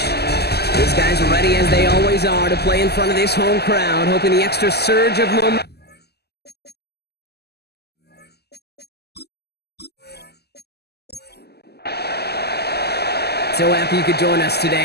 These guys are ready, as they always are, to play in front of this home crowd, hoping the extra surge of momentum. So happy you could join us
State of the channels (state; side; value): late; right; 0.47 ms